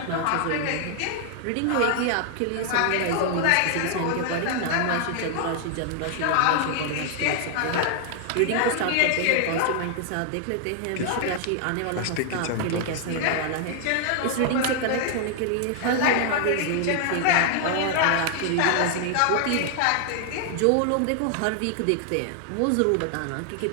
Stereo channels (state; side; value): different; both; correlation 0.00